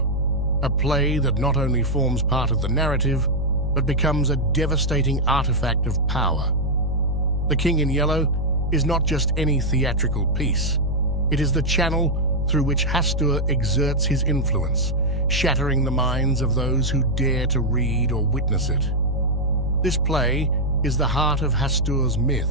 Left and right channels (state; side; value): noise; right; hum, 4 dB below the sound